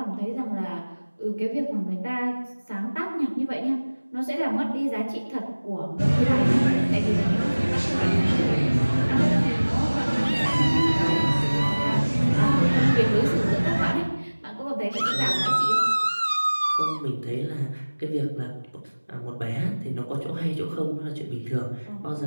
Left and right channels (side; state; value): both; inverted; correlation -1.00